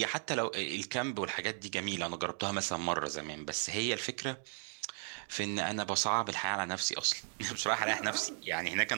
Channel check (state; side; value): silent; left; 54 dB below the other